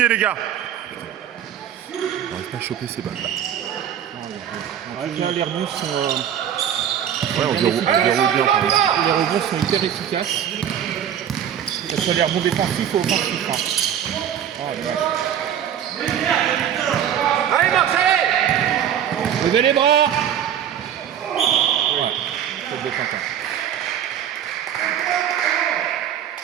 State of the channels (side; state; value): left; quieter; 9.6 dB